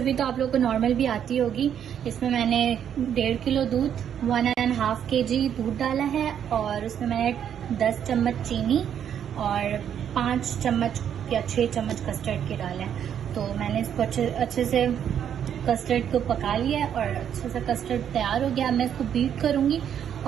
तो आप लोगों को नॉर्मल भी आती होगी। इसमें मैंने 1.5 किलो दूध, 1.5 kg दूध डाला है और उसमें मैंने 10 चम्मच चीनी और 5 चम्मच या 6 चम्मच कस्टर्ड के डाला है। तो मैंने इसको अच्छे से कस्टर्ड को पका लिया है और अच्छे से कस्टर्ड तैयार हो गया। मैं इसको बीट करूँगी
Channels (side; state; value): left; quieter; 9.0 dB